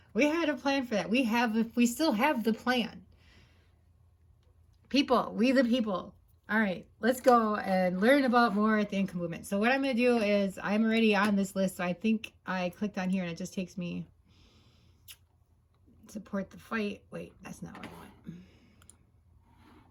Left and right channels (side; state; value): both; identical; correlation 1.00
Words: We had a plan for that. We still have the plan. People, we the people. All right, let's go and learn about more at the income movement. So what I'm going to do is I'm already on this list. So I think I clicked on here and it just takes me support the fight. Wait, that's not what I want.